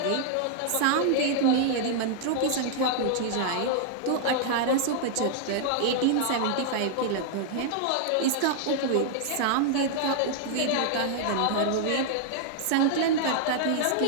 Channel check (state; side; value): different; both; correlation -0.01